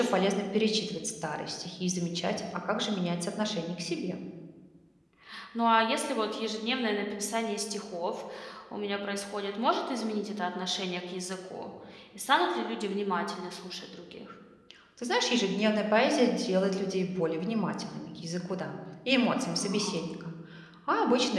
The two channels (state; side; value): identical; both; correlation 1.00